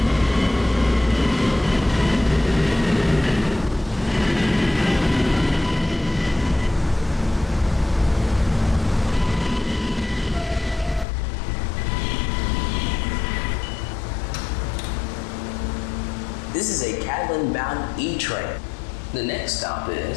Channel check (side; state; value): right; drops out; at 11.1 s